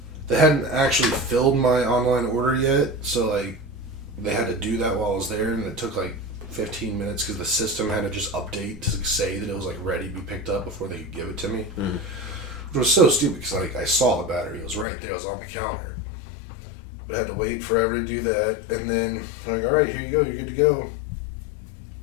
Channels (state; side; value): drops out; right; at 14.9 s